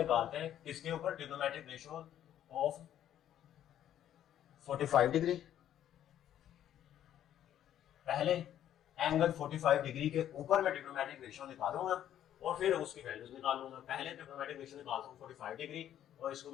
हैं किसके ऊपर? Trigonometric ratio of 45 degree. पहले एंगल 45 डिग्री के ऊपर मैं ट्रिग्नोमेट्रिक रेशियो निकालूंगा और फिर उसकी वैल्यूज निकालूंगा। पहले ट्रिग्नोमेट्रिक रेशियो निकालता हूं 45 डिग्री और इसको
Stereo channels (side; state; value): right; quieter; 11.0 dB